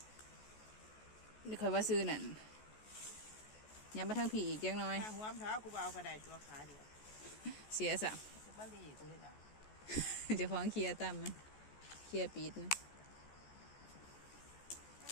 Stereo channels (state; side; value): late; right; 14 ms